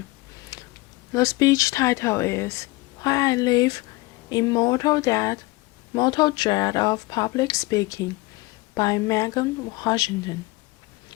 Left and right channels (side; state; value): right; quieter; 22.3 dB